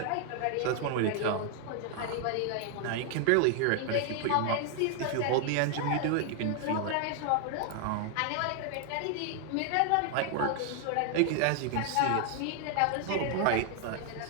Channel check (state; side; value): different; both; correlation 0.00